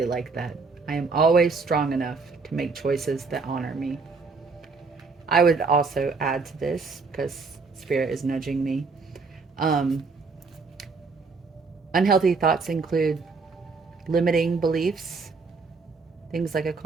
like that. I am always strong enough to make choices that honor me. I would also add to this, because Spirit is nudging me. Um, Unhealthy thoughts include limiting beliefs, things like a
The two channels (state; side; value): quieter; left; 4.4 dB